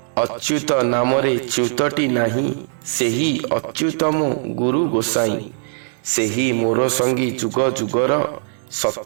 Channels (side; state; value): left; silent; 66 dB below the other